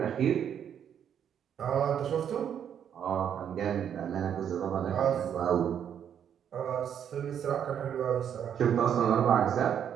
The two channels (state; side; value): quieter; left; 8.8 dB